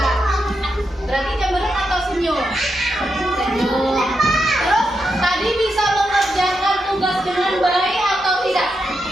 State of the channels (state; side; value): normal; both; correlation 0.85